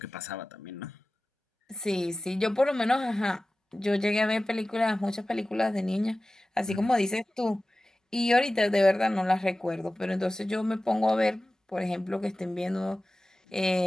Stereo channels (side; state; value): both; normal; correlation 0.96